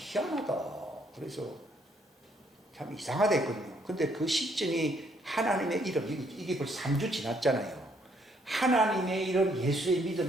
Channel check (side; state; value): both; normal; correlation 0.69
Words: 그래서 참 이상하다 했거든요. 근데 그 시점이 하나님의 이름, 이게 벌써 3주 지났잖아요. 하나님의 이름, 예수의